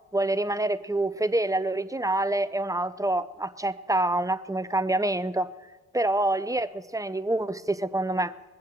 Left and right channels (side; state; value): both; normal; correlation 0.70